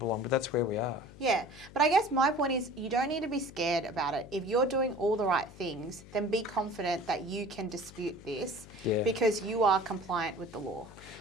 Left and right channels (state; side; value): noise; left; hum, 19 dB below the sound